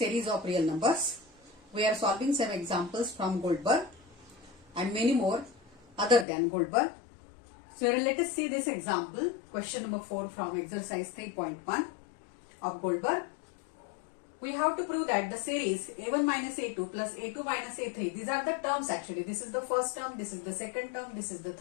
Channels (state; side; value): drops out; right; at 6.2 s